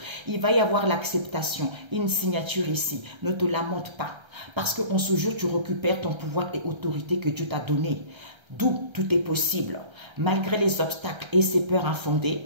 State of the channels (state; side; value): late; left; 1.3 ms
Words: Il va y avoir l'acceptation, une signature ici. Ne te lamente pas parce qu'en ce jour, tu récupères ton pouvoir et autorité que Dieu t'a donné. D'où tout est possible. Malgré les obstacles et ces peurs